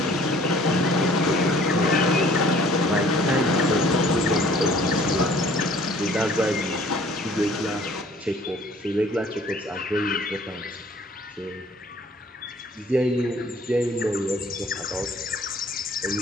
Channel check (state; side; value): normal; both; correlation 0.55